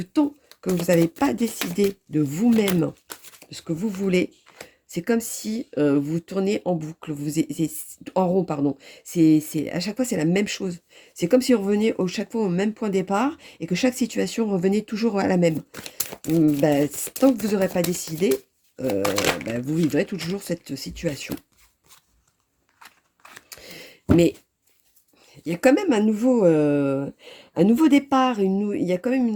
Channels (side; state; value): both; identical; correlation 1.00